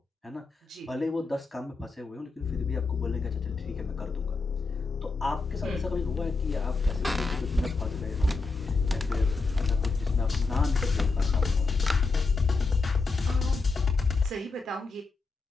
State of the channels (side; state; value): right; quieter; 4.0 dB